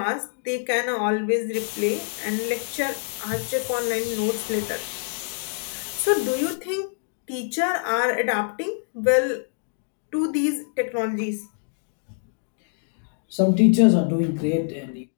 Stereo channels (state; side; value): silent; right; digital silence